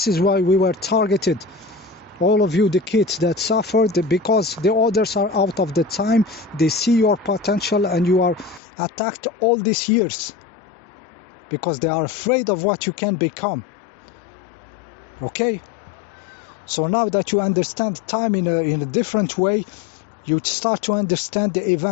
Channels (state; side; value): drops out; right; at 8.6 s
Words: is why we were targeted, all of you, the kids that suffered, because the others are out of the time. They see your potential and you are attacked all these years because they are afraid of what you can become. Okay, so now that you understand time in a different way, you start to understand the